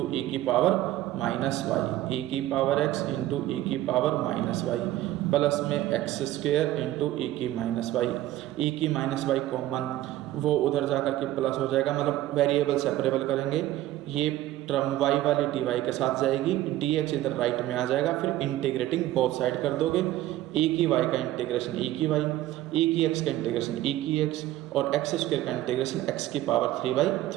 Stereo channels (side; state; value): left; quieter; 14.6 dB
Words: ई की पावर माइनस वाई, e की पावर x इंटू ई की पावर माइनस वाई प्लस में एक्स स्क्वेयर इंटू ई की माइनस वाई। ई की माइनस वाई कॉमन, वो उधर जा कर के प्लस हो जाएगा, मतलब वेरिएबल सेपरेबल करेंगे। ये टर्म y वाली dy के साथ जाएगी, dx इधर राइट में आ जाएगा, फिर इंटीग्रेटिंग बोथ साइड कर दोगे। e की y का इंटीग्रेशन e की y, e की x का इंटीग्रेशन e की x और x स्क्वायर का इंटीग्रेशन x की पावर